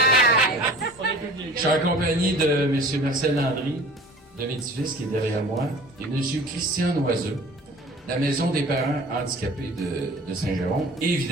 Je suis en compagnie de M. Marcel Landry, de Médicis, qui est derrière moi, et M. Christian Noiseux, la maison des parents handicapés de Saint-Jérôme, et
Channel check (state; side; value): normal; both; correlation 0.44